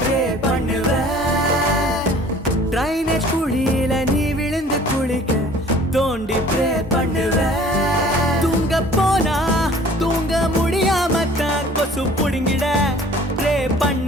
ப்ரே பண்ணுவேன். ட்ரைனேஜ் குழியில நீ விழுந்து குளிக்க தோண்டி ப்ரே பண்ணுவேன். தூங்க போனா தூங்க முடியாம தான் கொசு புடுங்கிட ப்ரே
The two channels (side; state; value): both; normal; correlation 0.50